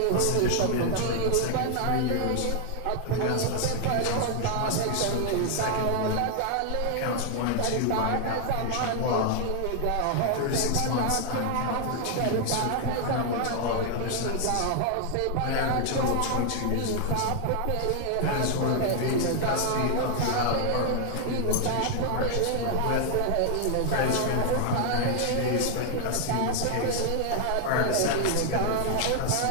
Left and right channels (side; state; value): both; different; correlation 0.00